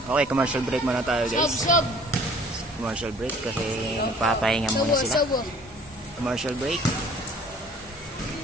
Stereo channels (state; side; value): normal; both; correlation 0.53